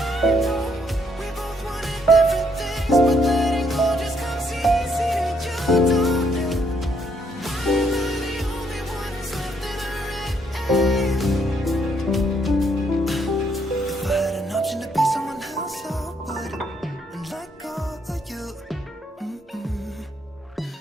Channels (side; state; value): both; normal; correlation 0.71